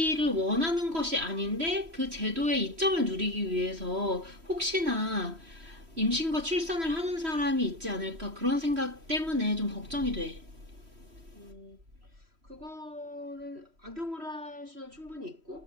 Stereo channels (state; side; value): late; left; 3.1 ms